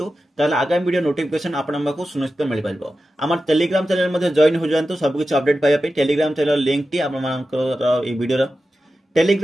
ताले आगामी वीडियो नोटिफिकेशन आपन को सुनिश्चित मिल पाइबो हमर टेलीग्राम चैनल मध्ये जॉइन हो जानतु सब कुछ अपडेट पाइबा पई टेलीग्राम चैनल लिंक टी आपन मानकर ई वीडियो रो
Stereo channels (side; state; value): both; normal; correlation 0.92